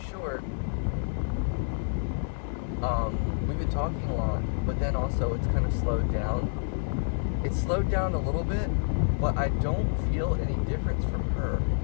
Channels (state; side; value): silent; right; digital silence